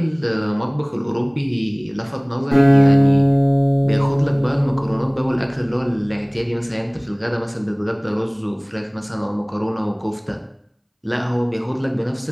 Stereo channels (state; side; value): identical; both; correlation 1.00